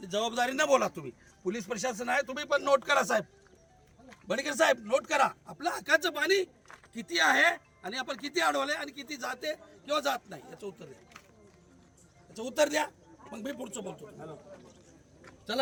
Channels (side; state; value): both; identical; correlation 1.00